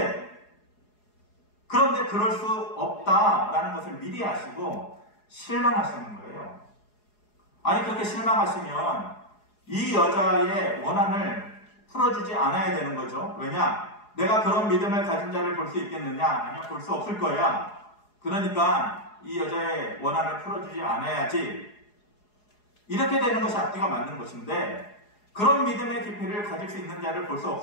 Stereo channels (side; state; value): right; late; 4.8 ms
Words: 그런데 그럴 수 없다라는 것을 미리 아시고 실망하시는 거예요. 아니 그렇게 실망하시면 이 여자의 원한을 풀어주지 않아야 되는 거죠. 왜냐? 내가 그런 믿음을 가진 자를 볼 수 있겠느냐? 아니면 볼 수 없을 거야. 그러니까 이 여자의 원한을 풀어주지 않아야지. 이렇게 되는 것이 앞뒤가 맞는 것인데 그런 믿음의 깊이를 가질 수 있는 자를 볼 수